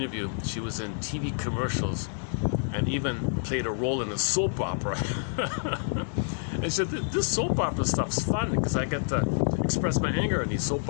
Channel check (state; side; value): silent; right; digital silence